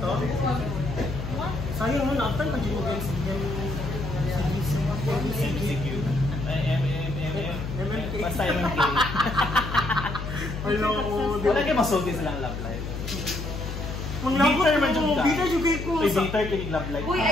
Sayang mo na, after pag mo guys, CQ. Basta MMK. Wala kayo masulti silang love life. Bitter man dyan ka. Bitter yung gay ko. Bitter kinig love life. Uy,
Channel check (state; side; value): noise; left; hum, 6 dB below the sound